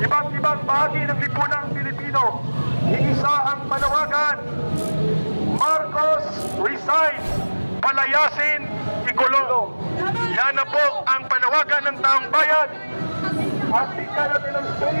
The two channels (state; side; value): inverted; both; correlation -1.00